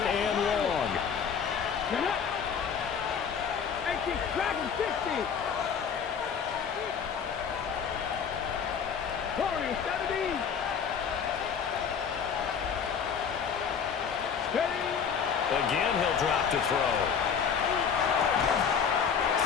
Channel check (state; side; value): quieter; right; 6.9 dB